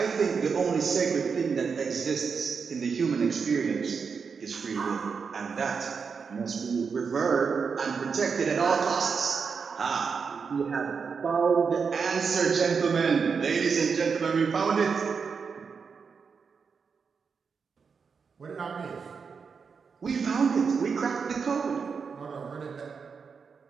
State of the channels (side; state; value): left; quieter; 5.7 dB